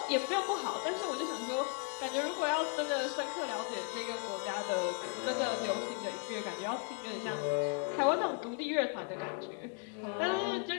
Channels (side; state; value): right; quieter; 37.9 dB